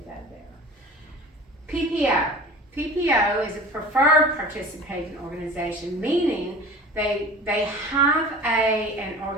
go there. PPO. PPO is a preferred participating organization, meaning they have an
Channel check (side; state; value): both; normal; correlation 0.39